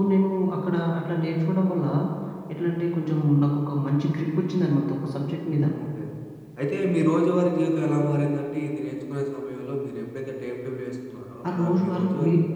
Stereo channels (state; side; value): identical; both; correlation 1.00